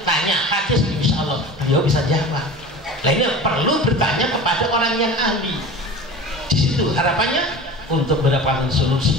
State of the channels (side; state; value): both; normal; correlation 0.35